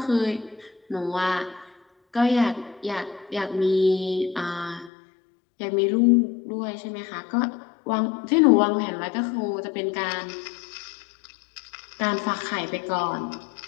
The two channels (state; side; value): drops out; right; at 4.9 s